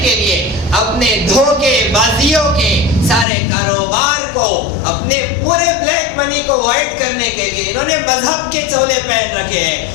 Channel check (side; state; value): right; drops out; at 3.2 s